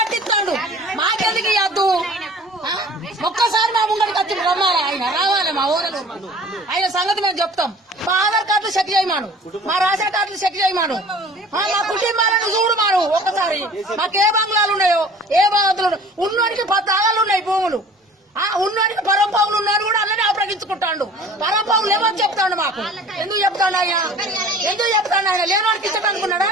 మాకెందుకు ఇవ్వద్దు? ఒక్కసారి మా ముంగడికి వచ్చి రమ్మాలి, ఆయన రావాలి మా ఊరలు. ఆయన సంగతి మేము చెప్తాం. మా ఆధార్ కార్డులు చెక్ చేయమాను, మా రేషన్ కార్డులు చెక్ చేయమాను, మా కుటుంబాలను చూడమాను. ఒక్కసారి మాకు ఏ బంగ్లాలు ఉన్నాయో, ఏ బాధలు ఉన్నోడికి 10 ఆగాలు ఉన్నాయి భూములు. ఉన్నోడికి పరంపావులు ఉన్నారు కూడా అలానే అప్రగించుకుంటాడు. పరంపావులు ఏమని చెప్తాడు మాకు? ఎందుకు చెప్తాడు ఆయన? ఎందుకు చెప్తాడు ఆయన? లేనివాడికి ఇచ్చటనుకున్నాడా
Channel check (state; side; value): normal; both; correlation 0.46